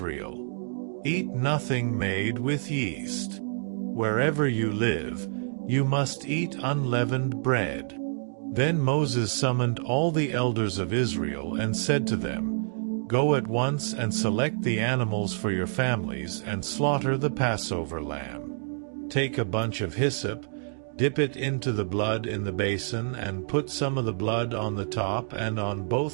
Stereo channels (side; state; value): left; silent; digital silence